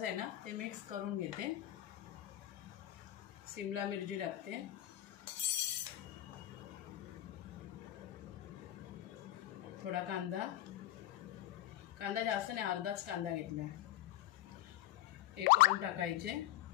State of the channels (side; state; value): right; quieter; 14.1 dB